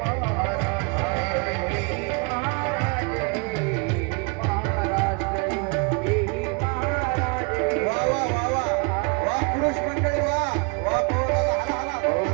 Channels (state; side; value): quieter; left; 33.0 dB